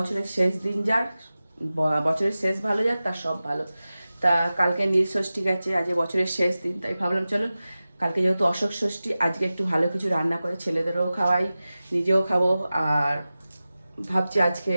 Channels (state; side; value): inverted; both; correlation -0.96